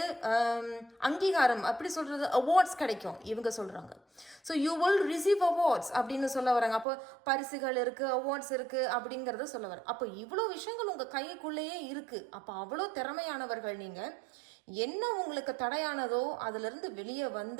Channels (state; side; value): drops out; left; at 6.9 s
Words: அங்கீகாரம் அப்படி சொல்கிறது அவார்ட்ஸ் கிடைக்கும் இவங்க சொல்கிறாங்க. So you will receive awards அப்படின்னு சொல்ல வராங்க. அப்போ பரிசுகள் இருக்குது, அவார்ட்ஸ் இருக்குது அப்படிங்கிறத சொல்ல வர. அப்போ இவ்வளோ விஷயங்கள் உங்கள் கைக்குள்ளேயே இருக்குது. அப்போ அவ்வளோ திறமையானவர்கள் நீங்கள். என்ன உங்களுக்கு தடையானதோ அதிலிருந்து வெளியே